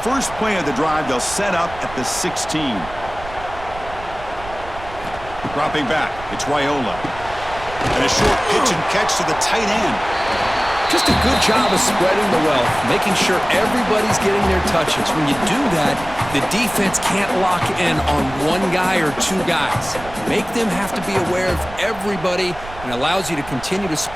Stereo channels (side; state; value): right; noise; rumble, 15 dB below the sound